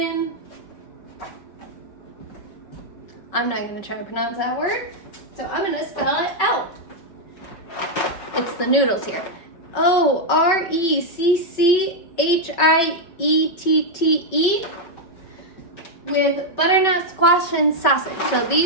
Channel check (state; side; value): late; right; 5.2 ms